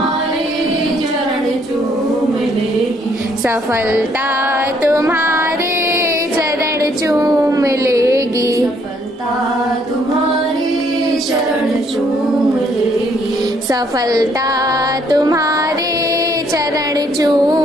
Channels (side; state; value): both; normal; correlation 0.67